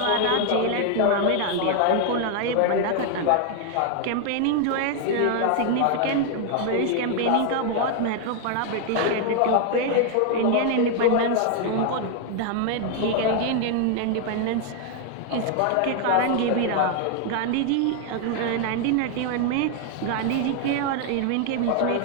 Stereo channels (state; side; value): different; both; correlation 0.00